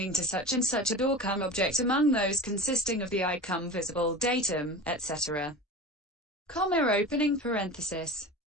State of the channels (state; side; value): normal; both; correlation 0.31